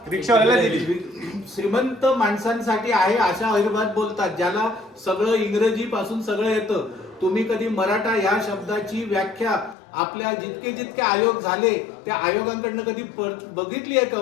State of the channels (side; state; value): right; drops out; at 9.8 s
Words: रिक्षावाल्याला दिली. श्रीमंत माणसांसाठी आहे अशा अहिर्भात बोलतात, ज्याला सगळं इंग्रजी पासून सगळं येतं. तुम्ही कधी मराठा या शब्दाची व्याख्या आपल्या जितके आयोग झाले त्या आयोगांकडनं कधी बघितली आहे